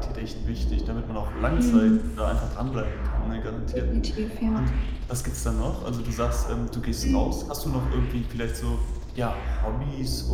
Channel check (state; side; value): identical; both; correlation 1.00